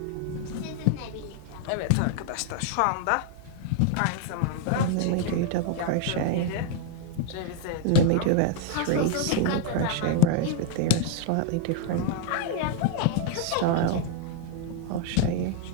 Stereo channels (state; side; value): different; both; correlation 0.00